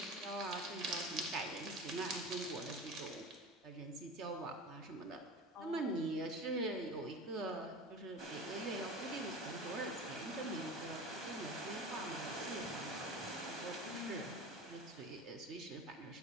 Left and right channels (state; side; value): normal; both; correlation 0.32